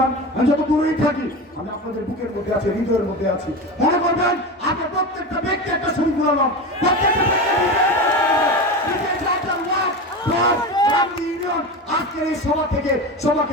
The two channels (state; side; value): normal; both; correlation 0.24